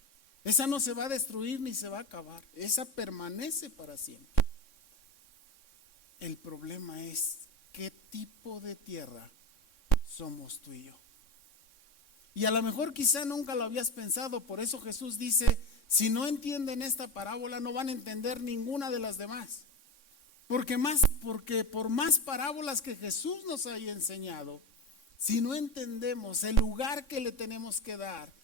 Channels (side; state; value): right; late; 3.6 ms